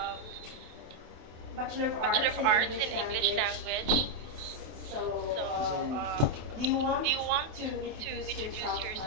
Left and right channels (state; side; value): late; left; 28 ms